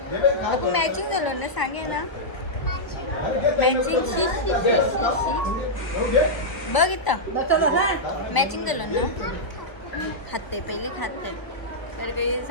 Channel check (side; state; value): right; late; 1.0 ms